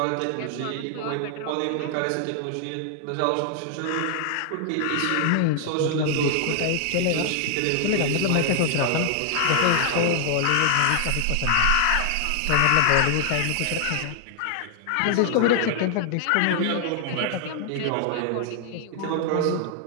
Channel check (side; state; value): both; different; correlation 0.00